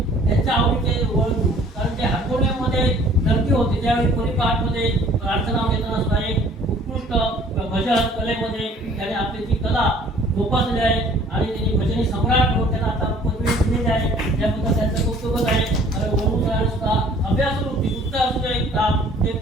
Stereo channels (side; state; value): both; normal; correlation 0.54